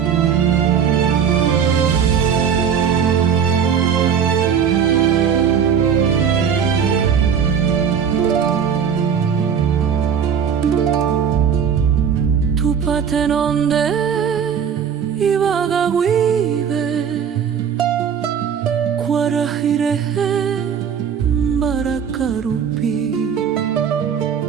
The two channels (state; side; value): quieter; left; 7.6 dB